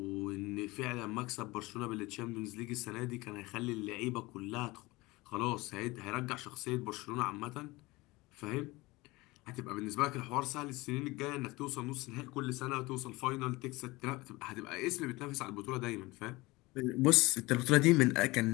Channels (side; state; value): right; quieter; 21.8 dB